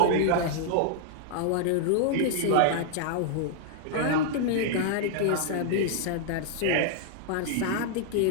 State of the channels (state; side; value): different; both; correlation -0.01